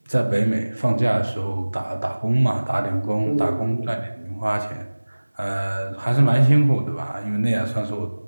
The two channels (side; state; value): both; inverted; correlation -1.00